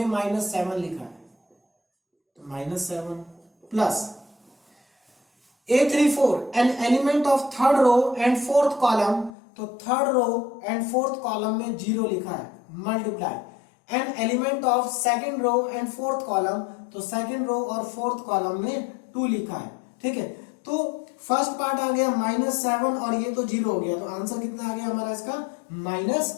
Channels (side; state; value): right; drops out; at 9.3 s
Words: -7 लिखा है, तो -7 plus A34 an element of third row and fourth column, तो third row and fourth column में 0 लिखा है, multiply an element of second row and fourth column, तो second row और फोर्थ कॉलम में 2 लिखा है। ठीक है, तो फर्स्ट पार्ट आ गया -7 और ये तो 0 हो गया, तो आंसर कितना आ गया हमारा इसका